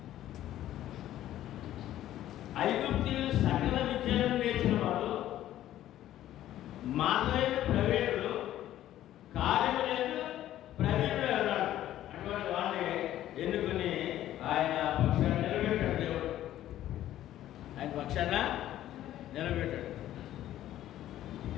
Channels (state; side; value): quieter; right; 13.0 dB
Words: ఐగుప్తీయులు సకల విద్యలను నేర్చిన వాడు, మార్గైన ప్రవీణుడు, కార్యములందు ప్రవీణుడు అన్నాడు. అటువంటి వాడిని ఎన్నుకుని ఆయన పక్షాన్ని నిలబెట్టాడు. దేవుడు ఆయన పక్షాన నిలబెట్టాడు.